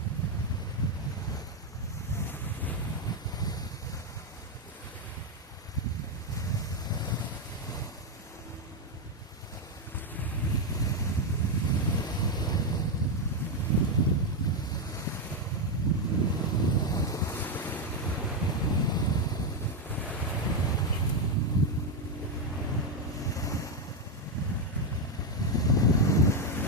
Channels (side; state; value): both; normal; correlation 0.04